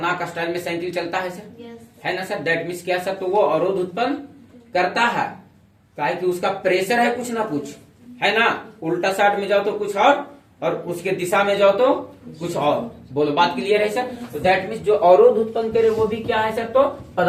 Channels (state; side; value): identical; both; correlation 1.00